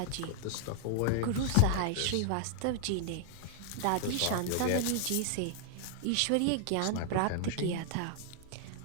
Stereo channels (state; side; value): different; both; correlation 0.00